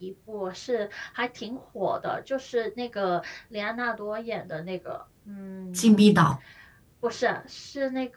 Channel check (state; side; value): identical; both; correlation 1.00